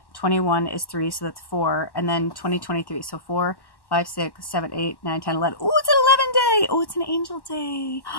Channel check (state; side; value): late; right; 1.1 ms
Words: 21 is 3, so that's 4, and then 2023, so 4, 5, 6, 7, 8, 9, 10, 11. Oh, it's an 11 day. Oh, it's an angel day.